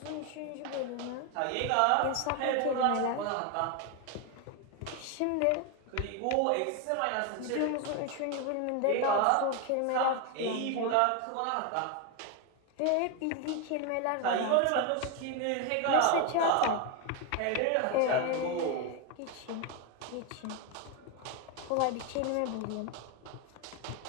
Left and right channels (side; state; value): both; different; correlation 0.01